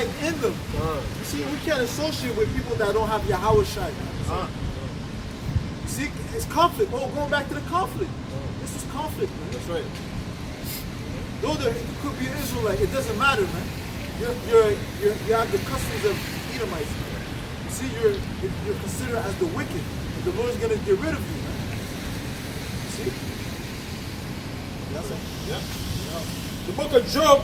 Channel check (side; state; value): both; identical; correlation 1.00